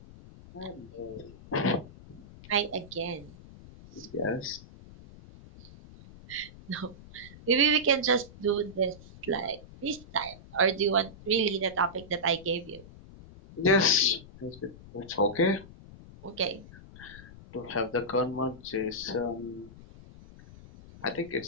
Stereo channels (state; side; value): noise; left; rumble, 18 dB below the sound